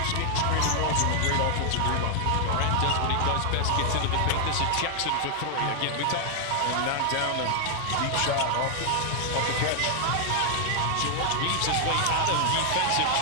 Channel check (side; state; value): both; different; correlation 0.00